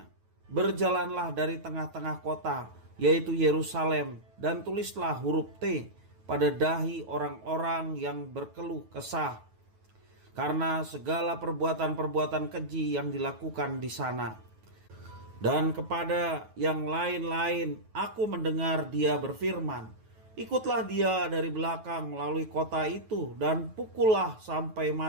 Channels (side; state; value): left; late; 9.2 ms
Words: "Berjalanlah dari tengah-tengah kota, yaitu Yerusalem, dan tulislah huruf T pada dahi orang-orang yang berkeluh kesah, karena segala perbuatan-perbuatan keji yang dilakukan di sana." Dan kepada yang lain-lain aku mendengar dia berfirman, "Ikutlah dia dari belakang melalui kota itu dan pukullah sampai